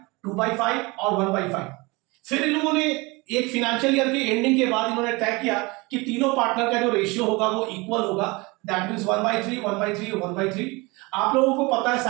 और 1/5। फिर इन लोगों ने एक फाइनेंशियल ईयर के एंडिंग के बाद इन्होंने तय किया कि तीनों पार्टनर का जो रेशियो होगा वो इक्वल होगा, दैट मींस 1/3 1/3 1/3। आप लोगों को पता है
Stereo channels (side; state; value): left; quieter; 25.1 dB